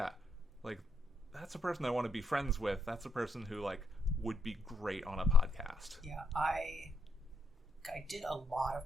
like that's a person I want to be friends with. That's a person who like would be great on a podcast. Yeah, I did a lot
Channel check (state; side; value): normal; both; correlation 0.75